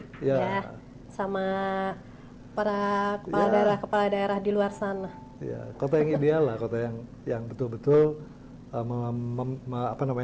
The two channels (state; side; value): identical; both; correlation 1.00